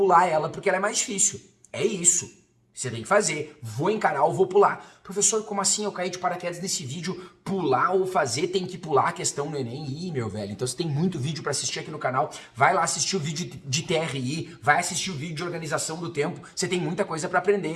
ela, porque ela é mais difícil. É isso. Você tem que fazer, vou encarar ou vou pular. Professor, como assim eu caí de paraquedas nesse vídeo? Pular ou fazer, tem que pular a questão no Enem? Ih, meu velho, então você tem muito vídeo para assistir aqui no canal. Vai lá assistir o vídeo de TRI, vai assistir o vídeo de organização do tempo. Você tem muita coisa para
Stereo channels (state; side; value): identical; both; correlation 1.00